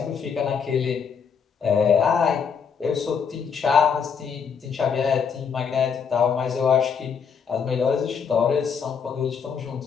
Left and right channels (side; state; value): right; quieter; 6.5 dB